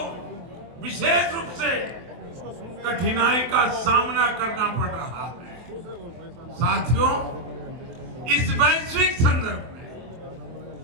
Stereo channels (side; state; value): left; late; 23 ms